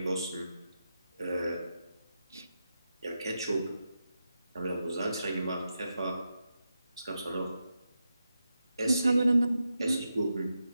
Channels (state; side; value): inverted; both; correlation -0.88